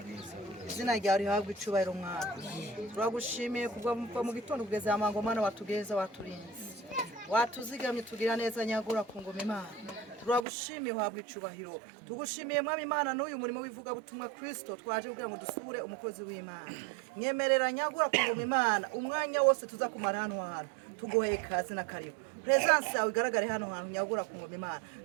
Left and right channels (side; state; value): left; drops out; at 10.5 s